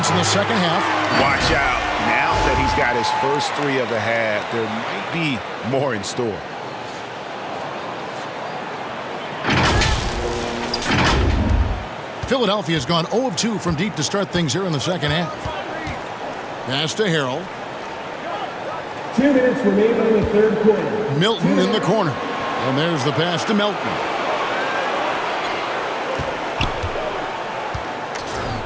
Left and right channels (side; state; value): both; identical; correlation 1.00